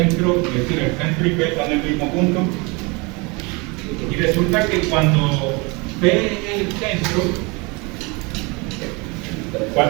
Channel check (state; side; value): quieter; left; 28.1 dB